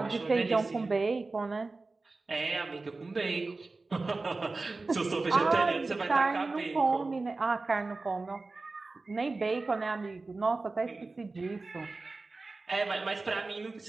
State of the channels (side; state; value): left; quieter; 3.5 dB